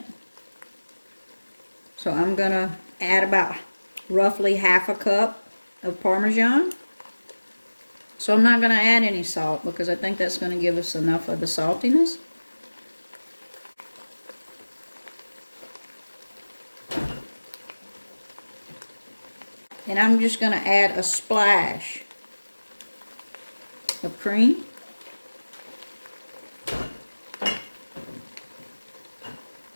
So I'm going to add about roughly half a cup of Parmesan. So I'm not going to add any salt because I think that's going to give us enough of the saltiness. And I'm just going to add a splash of cream.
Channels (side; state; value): both; inverted; correlation -1.00